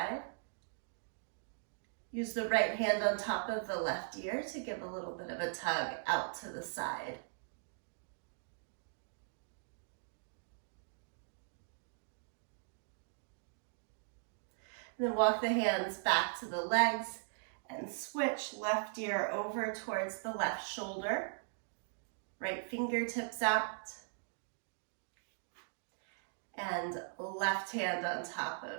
Use the right hand on top of the left ear to give a little bit of a tug out to the side. And then walk the hands back to the legs and switch left ear over towards the left shoulder. Right fingertips out. And left hand on top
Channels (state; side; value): silent; left; digital silence